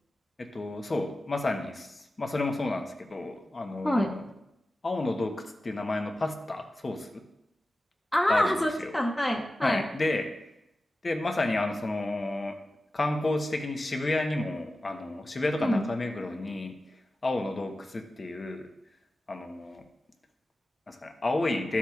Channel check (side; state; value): both; normal; correlation 0.94